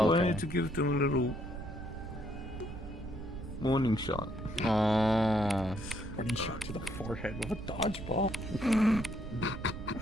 to give them a little warning shot. Oh. Warning shot to the forehead with a dodgeball. You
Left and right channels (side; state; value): right; noise; rumble, 10 dB below the sound